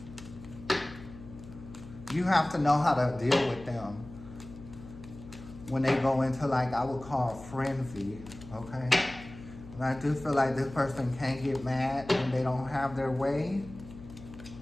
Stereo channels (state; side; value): noise; left; hum, 16 dB below the sound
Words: you have to know how to deal with them when they go into, like, I would call frenzy, okay? And I do feel like this person can get mad when they don't have their way.